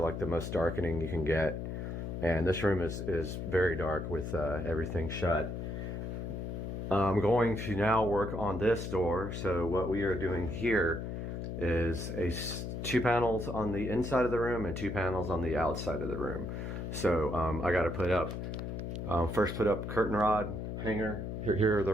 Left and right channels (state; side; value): noise; left; hum, 5 dB below the sound